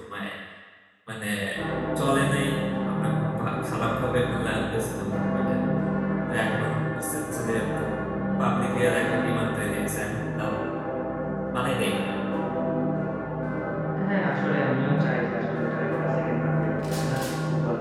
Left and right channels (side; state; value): both; identical; correlation 1.00